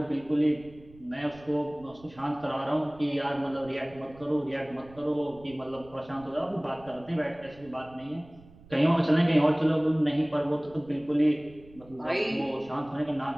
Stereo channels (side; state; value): right; noise; rumble, 23 dB below the sound